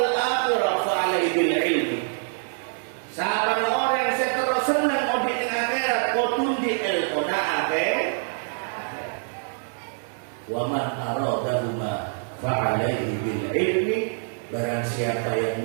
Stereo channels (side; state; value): left; silent; digital silence